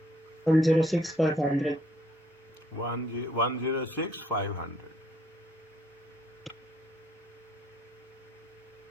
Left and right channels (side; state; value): both; normal; correlation 0.65